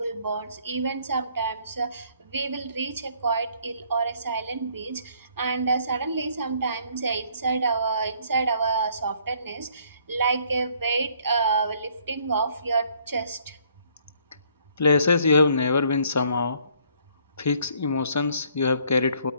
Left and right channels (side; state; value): both; inverted; correlation -0.63